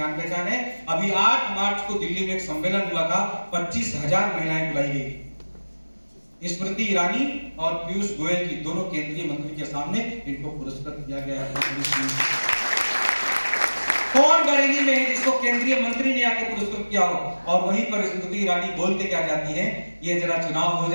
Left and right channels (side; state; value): both; inverted; correlation -1.00